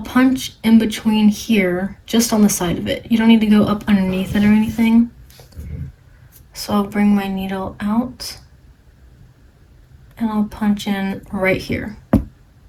punch in between here, just on the side of it. You don't need to go up underneath it or anything. So I'll bring my needle out and I'll punch in right here.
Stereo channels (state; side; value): identical; both; correlation 1.00